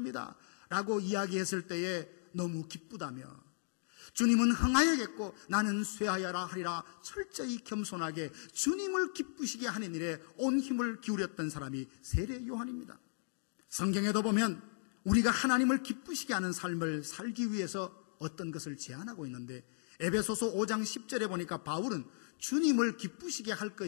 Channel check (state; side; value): silent; right; digital silence